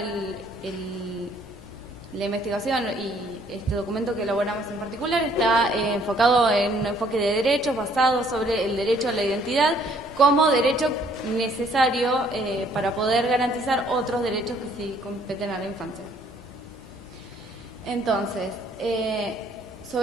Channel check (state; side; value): normal; both; correlation 0.63